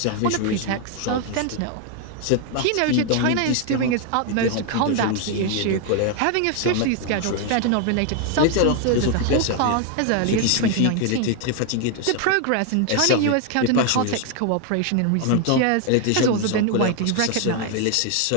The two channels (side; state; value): both; different; correlation 0.00